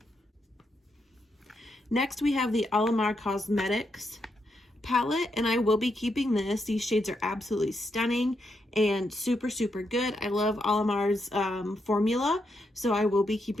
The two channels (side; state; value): both; normal; correlation 0.81